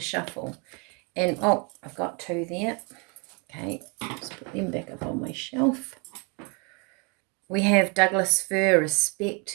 shuffle. And, oh, I've got two there. Okay, let's put them back up on my shelf. We have Douglas Fir,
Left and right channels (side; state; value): left; quieter; 32.0 dB